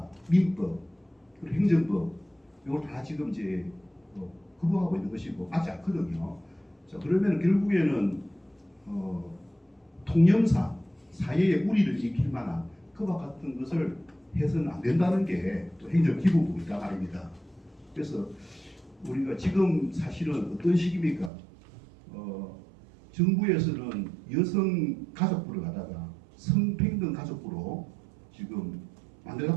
민법 그리고 행정법 이걸 다 지금 이제 거부하고 있는 것이고 맞지 않거든요. 자 그러면 결국에는 통념상 사회의 우리를 지킬 만한 그와 같은 것을 해서는 안 된다는 게 또 행정기본법이다 말입니다. 그래서 우리가 지금 사실은 어떤 시기입니까? 정부에서는 여성 가족부를 갖다가 성평등 가족부로 지금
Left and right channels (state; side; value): drops out; left; at 21.3 s